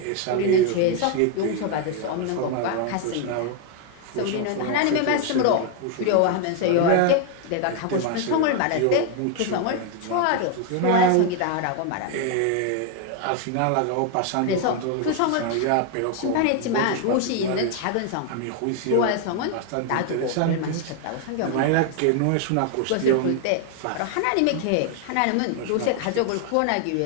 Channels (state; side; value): different; both; correlation 0.00